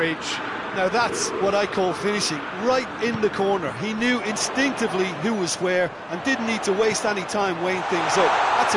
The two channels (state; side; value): identical; both; correlation 1.00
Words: Now that's what I call finishing, right in the corner. He knew instinctively who was where and didn't need to waste any time weighing things up. That's